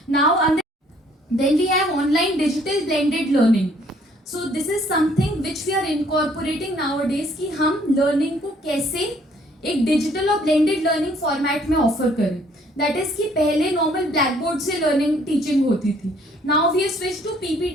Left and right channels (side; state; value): both; normal; correlation 0.62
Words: Now then we have online digital blended learning. So this is something which we are incorporating nowadays कि हम लर्निंग को कैसे एक डिजिटल और ब्लेंडेड लर्निंग फॉर्मेट में ऑफर करें. दैट इज कि पहले नॉर्मल ब्लैक बोर्ड से लर्निंग टीचिंग होती थी. Now we have switch to